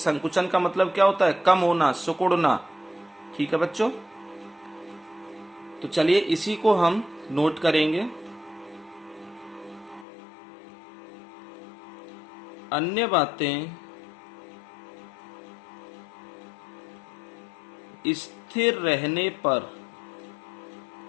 का मतलब क्या होता है? कम होना, सिकुड़ना। ठीक है बच्चों। तो चलिए इसी को हम नोट करेंगे। अन्य बातें स्थिर रहने पर,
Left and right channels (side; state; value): right; drops out; at 10.1 s